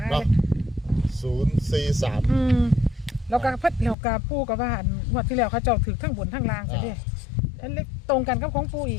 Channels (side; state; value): right; drops out; at 4.0 s